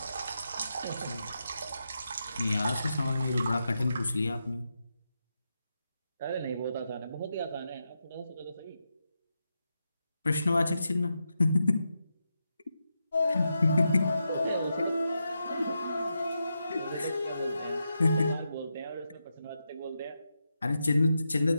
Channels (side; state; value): both; inverted; correlation -0.86